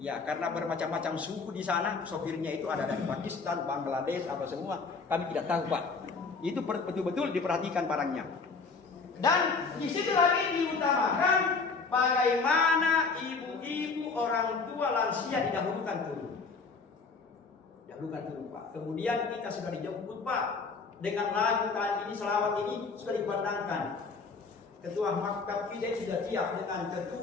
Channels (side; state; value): right; quieter; 4.6 dB